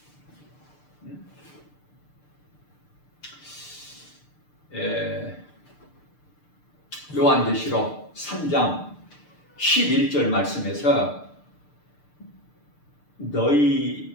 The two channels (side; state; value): right; late; 6.7 ms